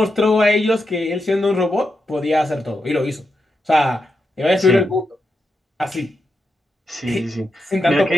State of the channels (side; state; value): both; normal; correlation 0.86